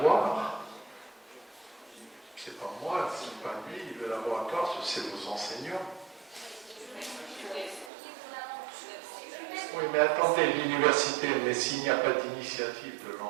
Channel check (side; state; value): left; drops out; at 7.9 s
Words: c'est pas moi, c'est pas lui, le laboratoire, c'est vos enseignants. Oui, mais attendez, l'université, mais s'il n'y a pas d'initiative de